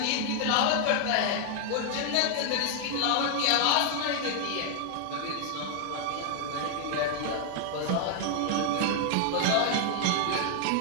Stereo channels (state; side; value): different; both; correlation 0.00